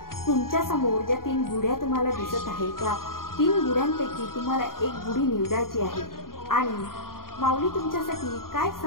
तुमच्या समोर ज्या 3 गुढ्या तुम्हाला दिसत आहेत, त्या 3 गुढ्यांपैकी तुम्हाला एक गुढी निवडायची आहे आणि माऊली तुमच्यासाठी काय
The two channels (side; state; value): right; late; 0.91 ms